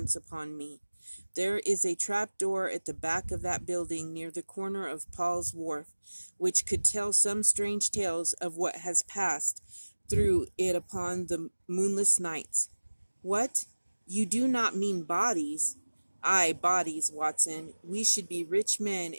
upon me. There is a trap door at the back of that building near the corner of Paul's Wharf, which could tell some strange tales of what has passed through it upon the moonless nights." "What? You do not mean bodies?" "Aye, bodies, Watson. We should be rich men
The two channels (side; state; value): both; inverted; correlation -1.00